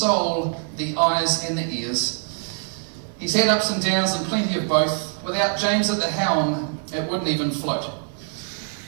the eyes and the ears. He's had ups and downs and plenty of both. Without James at the helm, it wouldn't even float.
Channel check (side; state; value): left; silent; 63 dB below the other